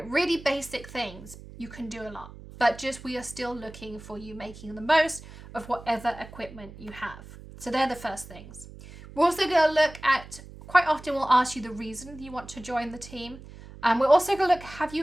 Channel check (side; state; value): right; noise; hum, 17 dB below the sound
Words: really basic things. You can do a lot, but we are still looking for you making the most of whatever equipment you have. So they're the first things. We're also going to look at, quite often we'll ask you the reason you want to join the team. We're also going to look, have